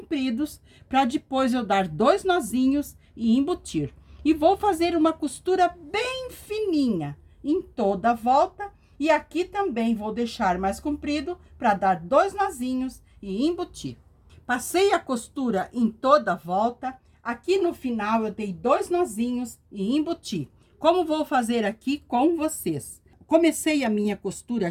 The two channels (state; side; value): identical; both; correlation 1.00